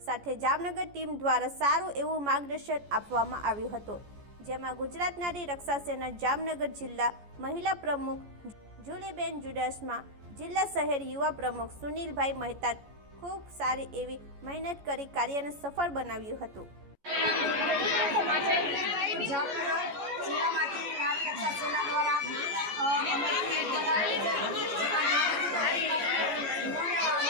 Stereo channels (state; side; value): late; left; 14 ms